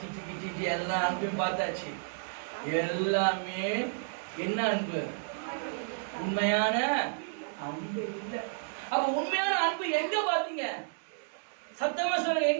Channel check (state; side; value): silent; left; digital silence